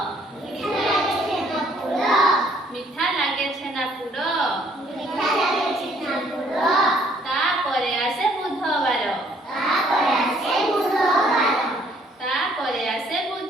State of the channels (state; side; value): normal; both; correlation 0.63